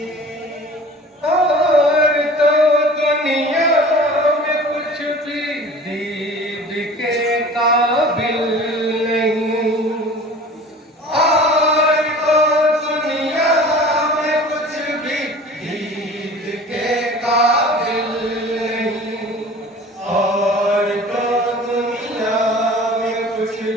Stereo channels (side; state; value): both; normal; correlation 0.42